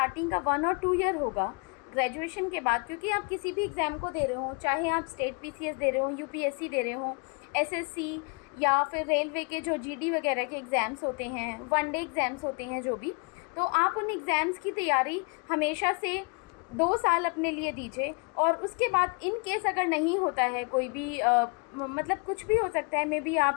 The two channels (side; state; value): right; quieter; 34.6 dB